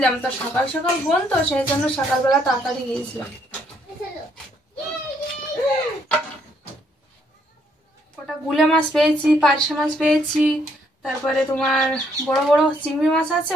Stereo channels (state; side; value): normal; both; correlation 0.70